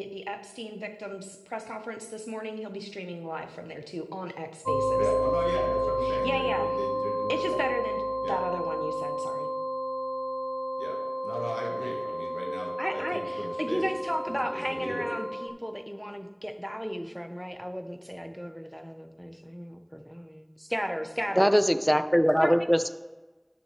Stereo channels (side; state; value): both; identical; correlation 1.00